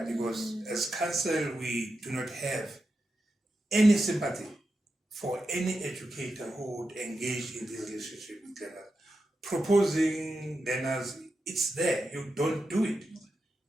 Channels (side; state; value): both; normal; correlation 0.89